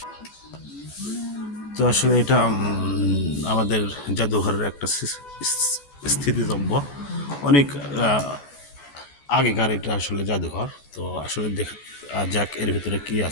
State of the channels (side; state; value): right; late; 14 ms